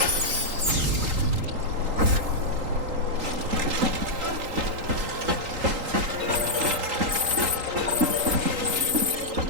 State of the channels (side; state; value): left; late; 3.8 ms